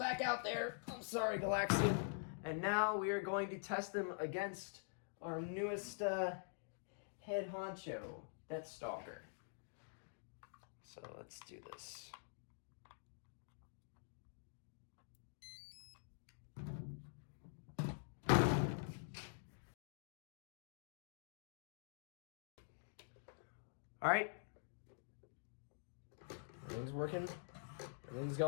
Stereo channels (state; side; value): silent; right; digital silence